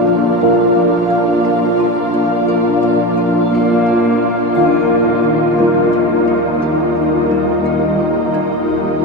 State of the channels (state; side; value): normal; both; correlation 0.26